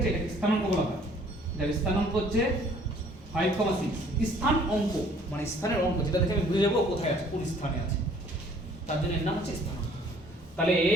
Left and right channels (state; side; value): normal; both; correlation 0.57